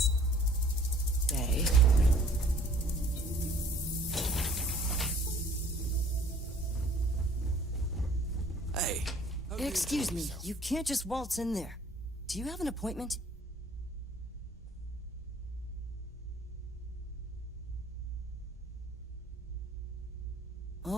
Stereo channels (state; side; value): normal; both; correlation 0.55